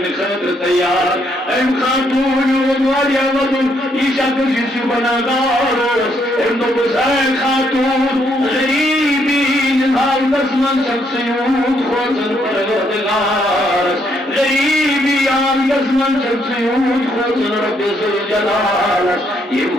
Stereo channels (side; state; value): both; normal; correlation 0.73